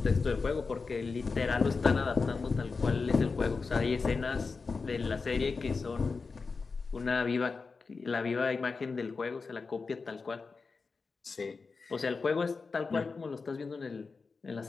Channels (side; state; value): right; quieter; 4.5 dB